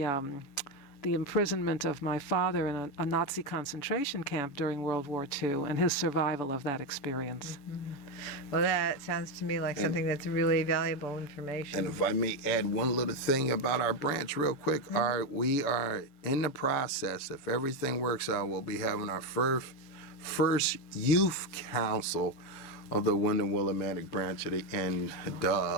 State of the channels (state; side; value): late; right; 7.1 ms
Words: imprisonment of my father in a Nazi concentration camp during World War II and his survival of that experience. Well, that sounds to me like something that's really valuable information. And if I may add one little thing about our branch real quick, we are in the process, if everything works out, we'll be having our first youth council of the Wyndham Willimantic branch of the